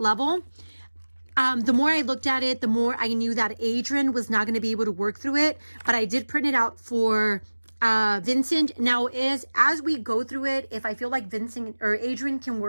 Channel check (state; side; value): inverted; both; correlation -1.00